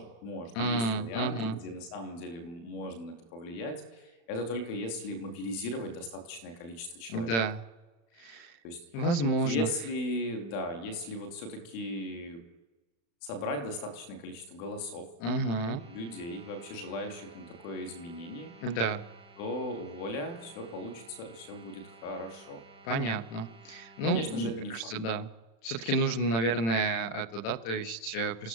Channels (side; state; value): right; late; 35 ms